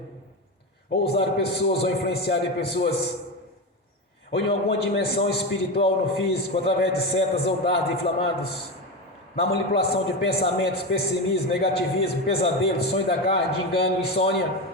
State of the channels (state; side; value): normal; both; correlation 0.18